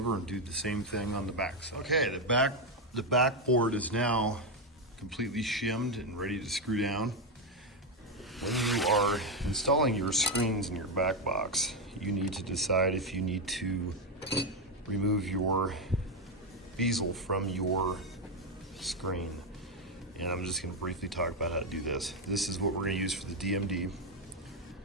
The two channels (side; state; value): both; normal; correlation 0.06